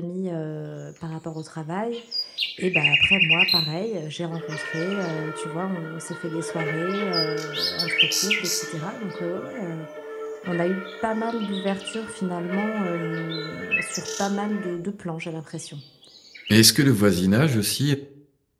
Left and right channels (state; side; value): identical; both; correlation 1.00